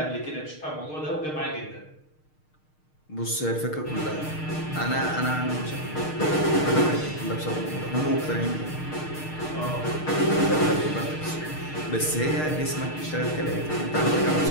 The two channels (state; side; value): late; right; 6.5 ms